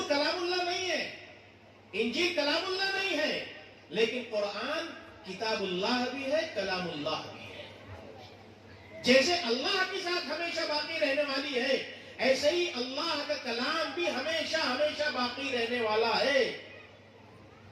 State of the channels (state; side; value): identical; both; correlation 1.00